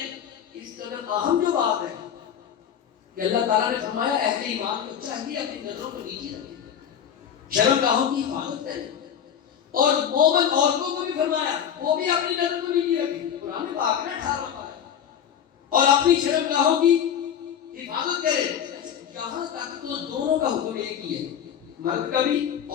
اس قدر اہم جو بات ہے کہ اللہ تعالیٰ نے فرمایا اہل ایمان کو چاہیے اپنی نظروں کو نیچے رکھیں، شرمگاہوں کی حفاظت کریں. اور مومن عورتوں کو بھی فرمایا وہ بھی اپنی نظر کو نیچے رکھیں. قرآن پاک نے 18 پارہ اور اپنی شرمگاہوں کی حفاظت کرے. یہاں تک تو دونوں کا حکم ایک ہی ہے، مرد کا بھی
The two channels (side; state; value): right; quieter; 8.8 dB